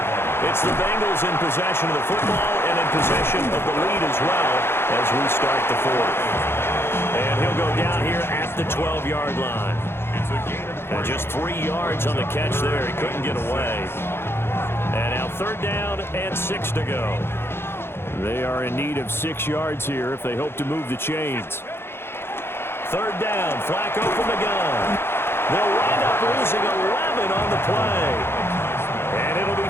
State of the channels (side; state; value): right; late; 0.11 ms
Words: It's the Bengals in possession of the football and in possession of the lead as well as we start the fourth. And he'll go down here at the 12-yard line. And just 3 yards on the catch there. He couldn't get away. And now third down and 6 to go. They are in need of 6 yards here if they hope to move the chains. Third down, Flacco from the gun. They'll wind up losing 11 on the play. And it'll